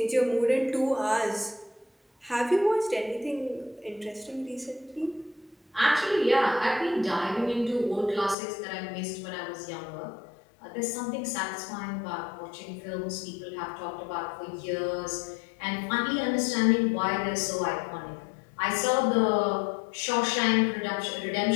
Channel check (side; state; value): right; drops out; at 8.3 s